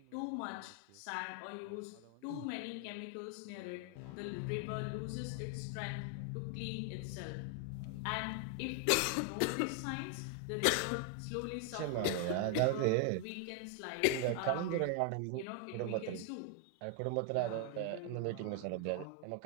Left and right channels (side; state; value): both; different; correlation 0.00